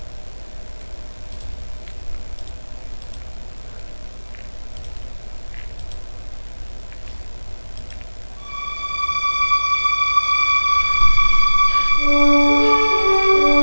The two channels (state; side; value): inverted; both; correlation -1.00